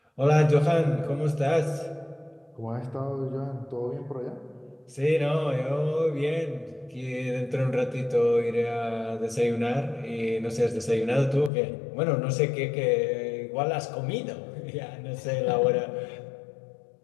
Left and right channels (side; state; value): right; drops out; at 11.5 s